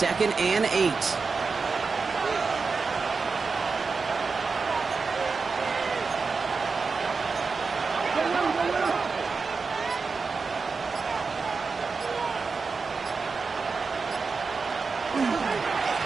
2nd and 8.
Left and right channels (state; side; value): quieter; left; 4.7 dB